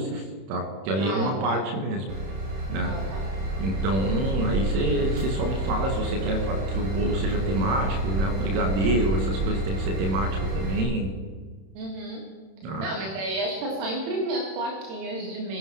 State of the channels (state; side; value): late; left; 31 ms